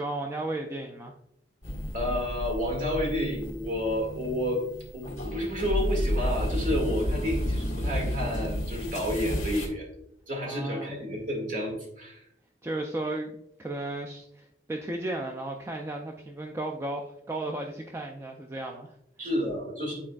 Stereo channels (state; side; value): normal; both; correlation 0.59